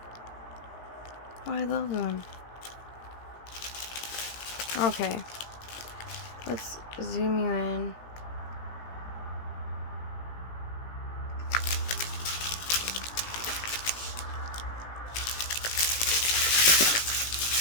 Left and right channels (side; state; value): right; late; 17 ms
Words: Oh, I love them. Okay. Let's zoom you in.